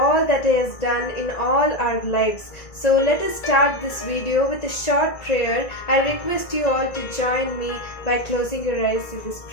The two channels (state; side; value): late; right; 2.0 ms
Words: that He has done in all our lives. So let us start this video with a short prayer. I request you all to join me by closing your eyes in this